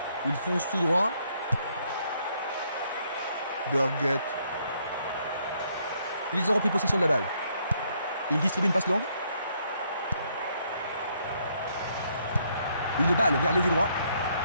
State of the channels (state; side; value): inverted; both; correlation -0.71